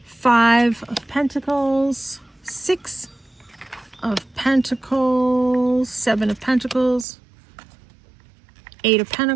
Five of Pentacles. Six of Pentacles. Seven of Pentacles. Eight of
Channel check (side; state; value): left; drops out; at 7.1 s